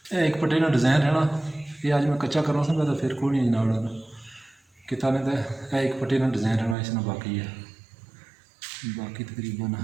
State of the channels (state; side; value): drops out; left; at 6.8 s